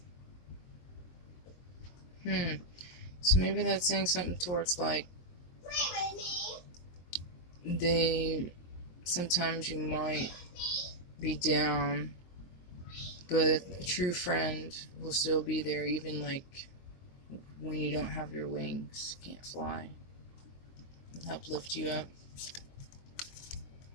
So maybe that's saying something towards like sometimes you might be down, but a true friend will still be there even like when you don't have your wings, can't fly, and help lift you up.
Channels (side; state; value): right; late; 23 ms